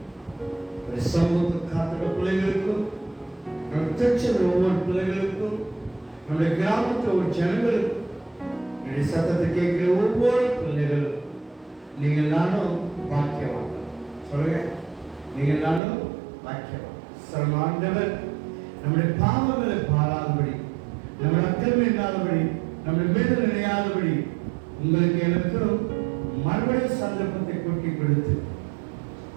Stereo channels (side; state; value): left; drops out; at 15.8 s